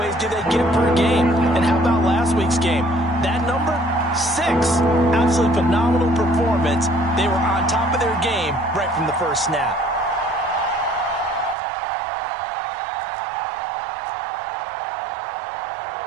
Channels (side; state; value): left; drops out; at 11.6 s